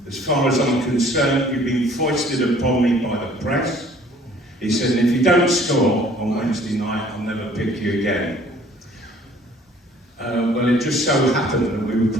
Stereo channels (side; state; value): both; normal; correlation 0.55